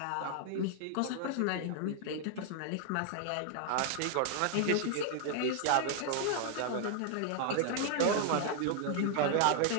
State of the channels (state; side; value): different; both; correlation 0.00